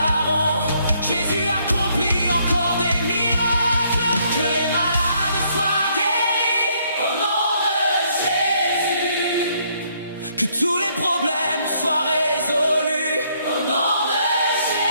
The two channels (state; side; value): inverted; both; correlation -0.69